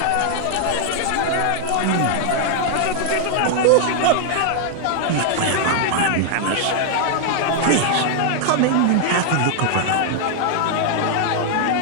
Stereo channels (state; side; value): different; both; correlation 0.00